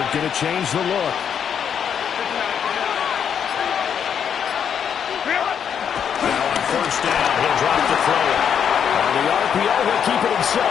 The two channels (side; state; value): right; quieter; 8.0 dB